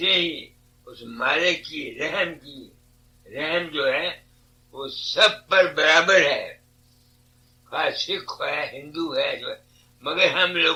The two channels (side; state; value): both; identical; correlation 1.00